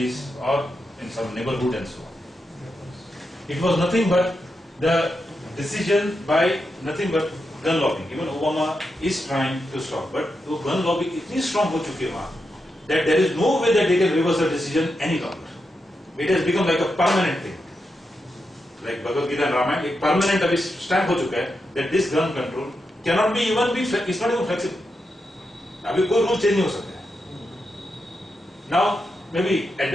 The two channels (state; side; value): normal; both; correlation 0.86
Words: or in some neighborhood and so on. It was nothing but the decision by nothing but gun lobbying. Even Obama is trying to stop, but वो gun lobbying इतनी strong हो चुकी है वहाँ that there is no way that they can reverse the decision any longer. It has become like a permanent thing. Like Bhagavad Gita and Ramayana, एक permanent अभी stamp हो चुका है that this gun control cannot be it's not even flexible. अभी कोई rule change नहीं हो सकता है. Now maybe at